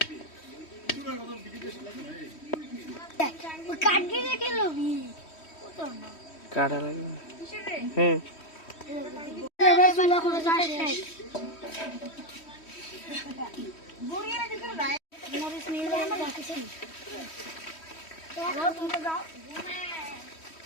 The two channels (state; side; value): late; right; 3.1 ms